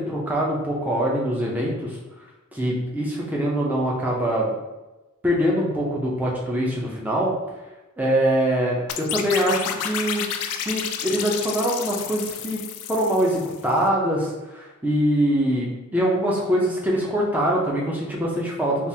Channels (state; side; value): normal; both; correlation 0.55